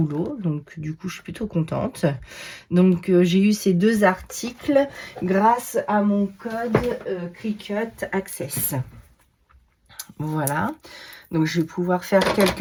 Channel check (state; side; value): identical; both; correlation 1.00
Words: Donc du coup, je suis plutôt contente. Donc j'ai eu ces deux articles grâce à mon code Cricut Access. Voilà. Donc je vais pouvoir faire